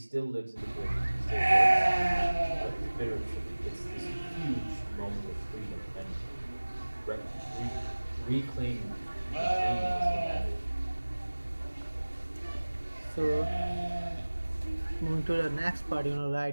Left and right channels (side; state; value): both; inverted; correlation -1.00